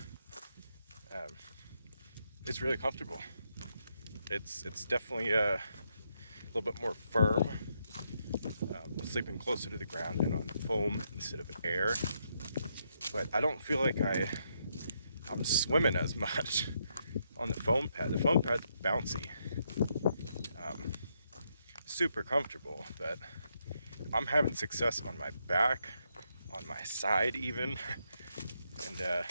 It's really comfortable. It's definitely a little bit more firm, sleeping closer to the ground and on foam instead of air. But I don't feel like I'm swimming as much on the foam pad. The foam pad's bouncy, super comfortable, but I'm having success on my back, on my side even, and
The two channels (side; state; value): both; inverted; correlation -0.78